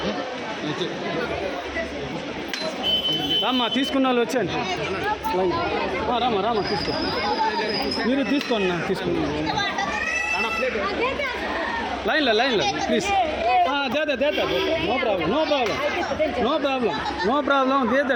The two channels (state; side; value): identical; both; correlation 1.00